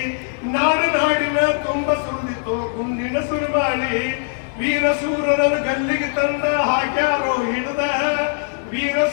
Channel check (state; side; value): silent; right; digital silence